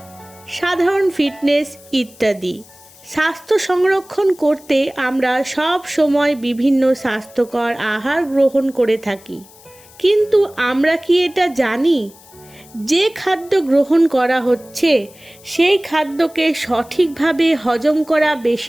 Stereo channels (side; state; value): left; noise; hiss, 24 dB below the sound